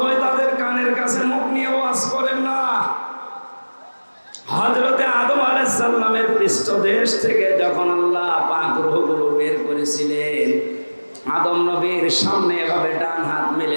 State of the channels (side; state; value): both; inverted; correlation -1.00